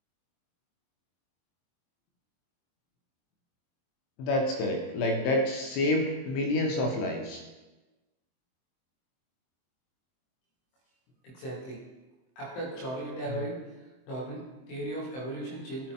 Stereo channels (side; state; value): right; late; 23 ms